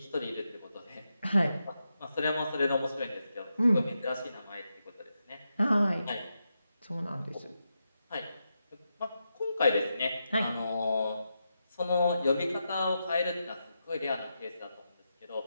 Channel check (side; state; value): both; inverted; correlation -0.87